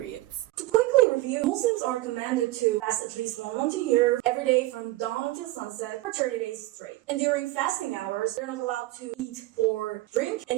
To quickly review, Muslims are commanded to fast at least one month a year, every day from dawn until sunset, for 30 days straight. And during fasting hours, they're not allowed to eat or drink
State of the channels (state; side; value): quieter; left; 18.1 dB